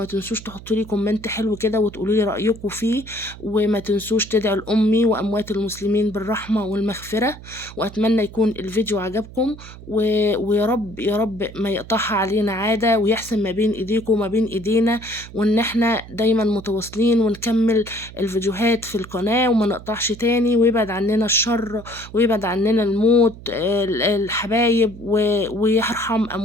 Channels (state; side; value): noise; right; hum, 16 dB below the sound